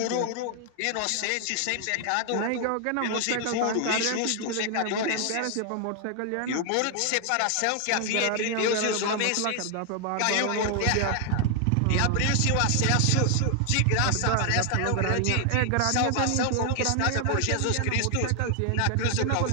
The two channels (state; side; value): different; both; correlation 0.00